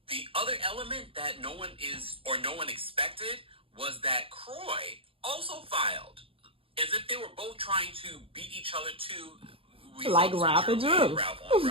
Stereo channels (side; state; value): left; late; 0.27 ms